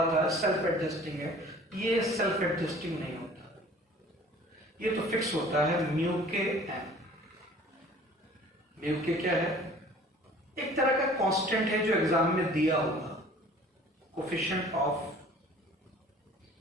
था सेल्फ एडजस्टिंग है, ये सेल्फ एडजस्टिंग नहीं होता। ये तो फिक्स होता है म्यू के एन। म्यू के क्या है, एक तरह का कांस्टेंट है जो एग्जाम में दिया होगा, कोफिशिएंट ऑफ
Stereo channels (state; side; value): normal; both; correlation 0.49